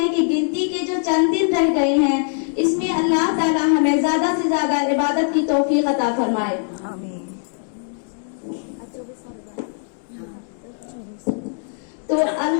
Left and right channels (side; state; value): right; silent; 65 dB below the other